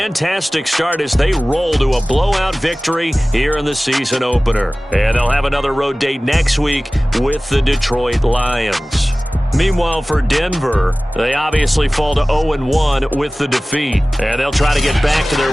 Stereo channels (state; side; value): normal; both; correlation 0.98